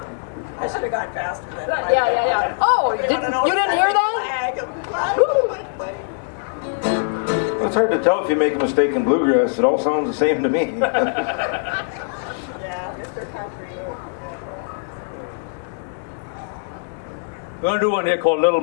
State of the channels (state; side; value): silent; right; digital silence